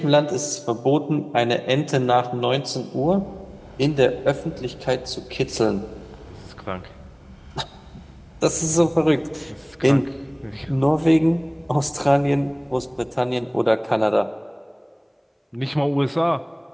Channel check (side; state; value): both; identical; correlation 1.00